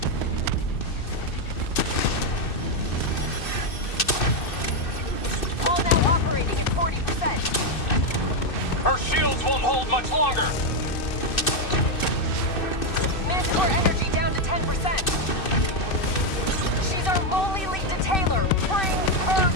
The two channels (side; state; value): right; late; 2.6 ms